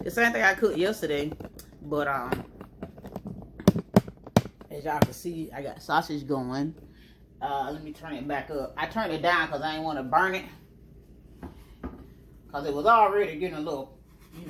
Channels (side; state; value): both; identical; correlation 1.00